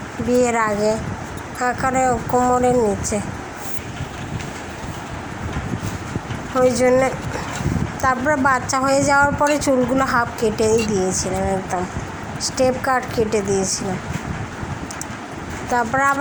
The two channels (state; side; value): identical; both; correlation 1.00